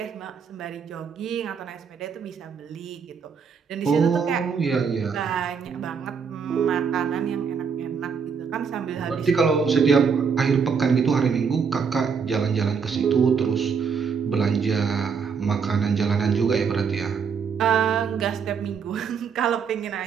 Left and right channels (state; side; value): quieter; left; 6.1 dB